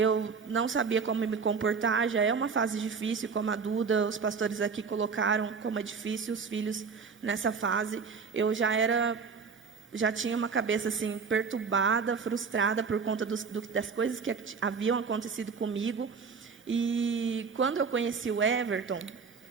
não sabia como me comportar, já é uma fase difícil, como a Duda, os pastores aqui colocaram como é difícil os filhos nessa fase. Eu já tinha uma cabeça assim perturbada, frustrada por conta das coisas que haviam acontecido comigo. E quando eu conheci o Everton,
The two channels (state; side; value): quieter; left; 5.4 dB